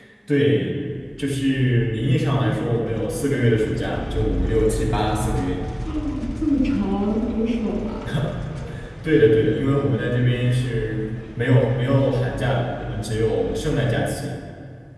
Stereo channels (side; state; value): both; identical; correlation 1.00